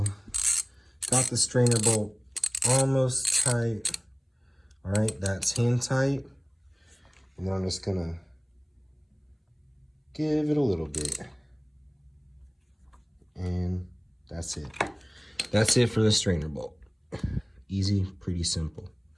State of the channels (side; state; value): both; identical; correlation 1.00